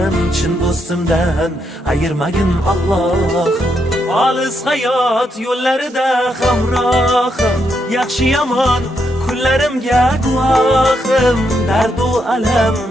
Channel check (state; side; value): normal; both; correlation 0.79